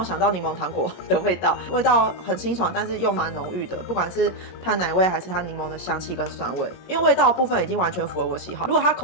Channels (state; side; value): late; right; 22 ms